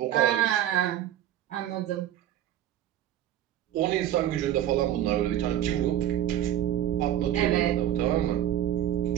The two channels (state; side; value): quieter; left; 11.9 dB